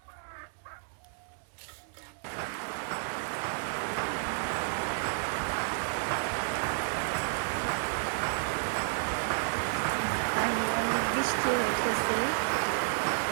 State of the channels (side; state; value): left; silent; digital silence